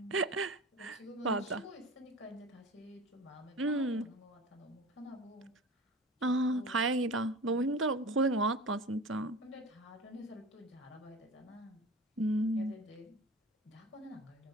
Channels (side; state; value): both; normal; correlation 0.35